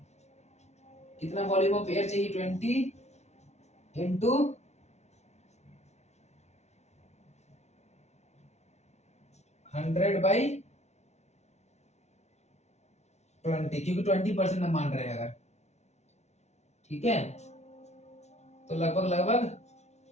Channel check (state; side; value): late; right; 0.32 ms